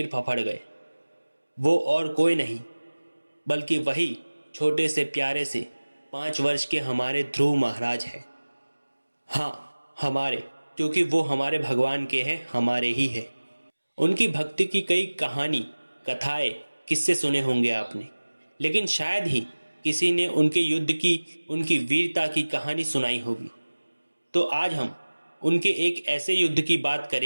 फफड़ गए। वो और कोई नहीं बल्कि वही छोटे से प्यारे से 5 वर्ष के हमारे ध्रुव महाराज हैं। हाँ, हमारे, क्योंकि वो हमारे भगवान के हैं, हमारे ही है। उनकी भक्ति की कई कहानी, कथाएं, किस्से सुने होंगे आपने, लेकिन शायद ही किसी ने उनके युद्ध की, उनकी वीरता की कहानी सुनाई होगी। तो आज हम उनके एक ऐसे युद्ध की बात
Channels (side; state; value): both; inverted; correlation -1.00